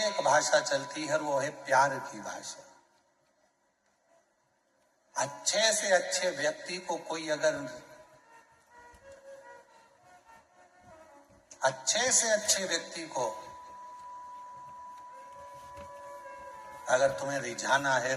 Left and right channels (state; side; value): identical; both; correlation 1.00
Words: भाषा चलती है और वो है प्यार की भाषा। अच्छे से अच्छे व्यक्ति को कोई अगर अच्छे से अच्छे व्यक्ति को अगर तुम्हें रिझाना है